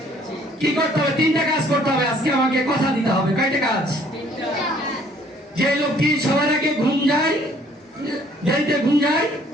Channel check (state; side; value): normal; both; correlation 0.60